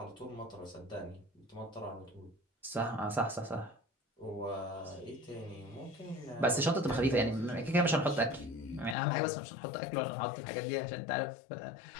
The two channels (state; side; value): drops out; right; at 9.0 s